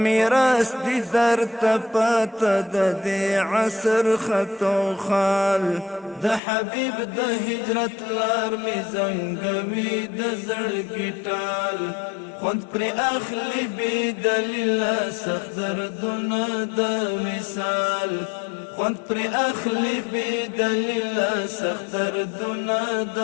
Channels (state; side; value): drops out; right; at 6.4 s